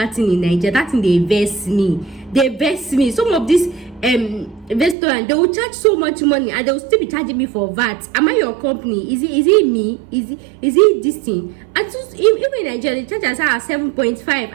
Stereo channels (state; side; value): drops out; left; at 5.0 s